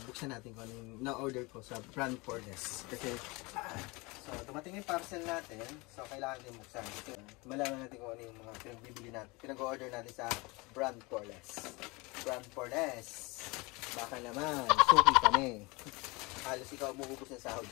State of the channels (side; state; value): right; quieter; 25.4 dB